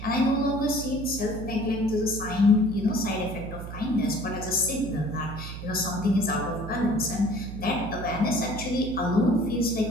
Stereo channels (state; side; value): noise; right; hum, 9 dB below the sound